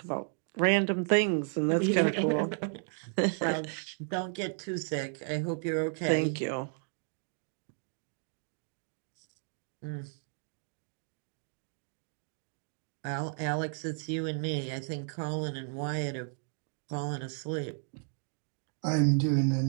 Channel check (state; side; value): silent; left; 55 dB below the other